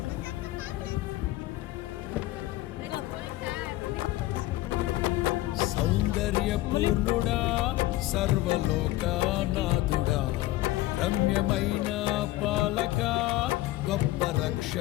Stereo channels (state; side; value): quieter; right; 17.0 dB